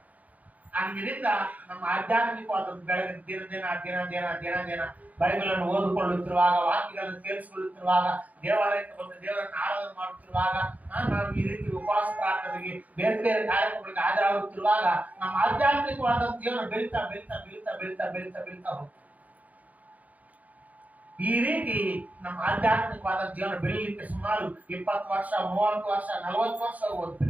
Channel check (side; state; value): left; late; 0.075 ms